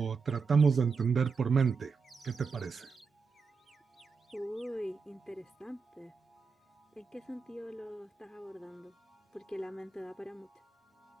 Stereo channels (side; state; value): left; quieter; 5.0 dB